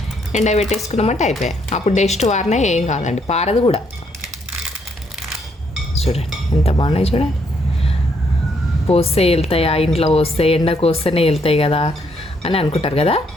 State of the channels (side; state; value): both; normal; correlation 0.72